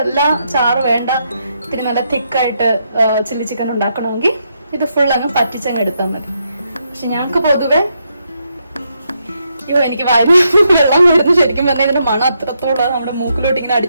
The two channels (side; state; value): both; inverted; correlation -0.79